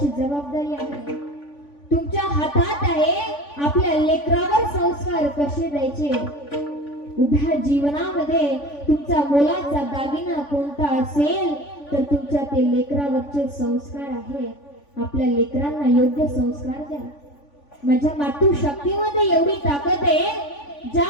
जबाबदारी आहे. तुमच्या हातात आहे आपल्या लेकरावर संस्कार कसे द्यायचे. उभ्या जीवनामध्ये तुमचा मोलाचा दागिना कोणता असेल तर तुमच्या ते लेकरावरचे संस्कार आहेत. आपल्या लेकरांना योग्य संस्कार द्या. माझ्या मातृशक्तीमध्ये एवढी ताकद आहे,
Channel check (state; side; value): late; right; 3.5 ms